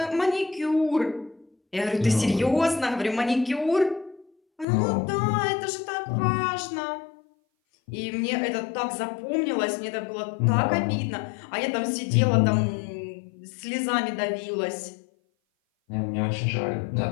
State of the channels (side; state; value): right; drops out; at 4.7 s